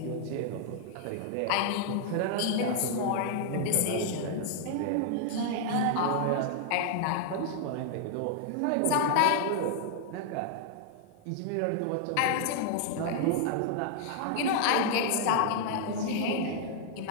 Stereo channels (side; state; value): both; different; correlation 0.00